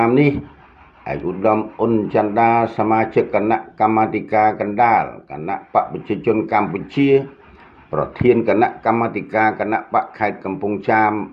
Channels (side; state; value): both; identical; correlation 1.00